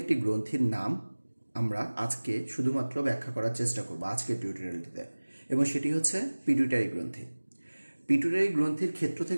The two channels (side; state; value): both; inverted; correlation -1.00